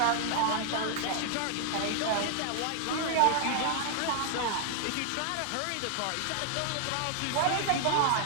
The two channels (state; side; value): different; both; correlation 0.00